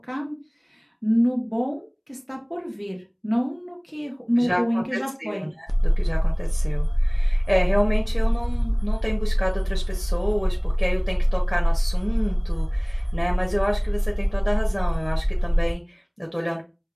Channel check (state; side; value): identical; both; correlation 1.00